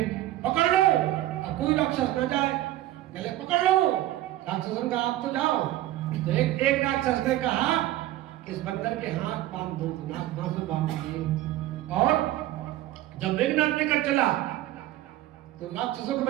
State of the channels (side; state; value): left; quieter; 14.9 dB